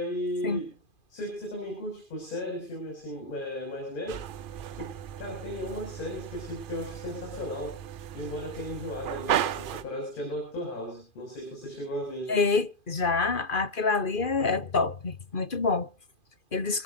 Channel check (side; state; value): right; late; 2.5 ms